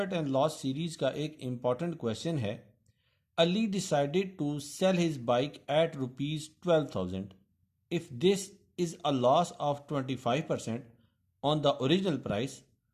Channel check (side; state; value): both; identical; correlation 1.00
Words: एंड लॉस सीरीज का एक इम्पॉर्टेंट क्वेश्चन है। Ali decided to sell his bike at ₹12,000 if this is a loss of 25% on the original price,